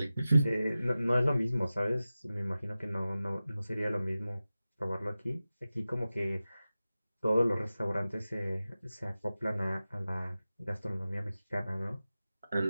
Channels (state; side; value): inverted; both; correlation -0.95